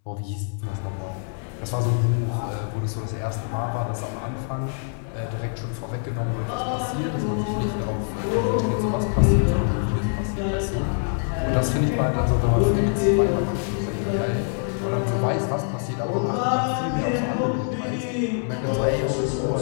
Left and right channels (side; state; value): right; silent; 62 dB below the other